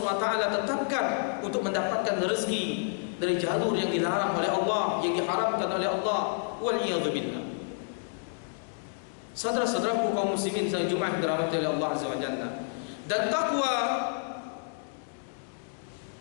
tetapkan untuk mendapatkan rezeki dari jalur yang dilarang oleh Allah, yang diharamkan oleh Allah. Waliyadzubillah. Saudara-saudaraku kaum muslimin sedang Jumat dirahmati oleh Allah Azza wa Jalla. Dan takwa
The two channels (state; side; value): silent; right; digital silence